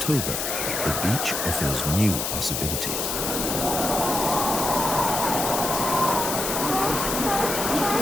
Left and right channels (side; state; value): left; noise; hiss, 2 dB below the sound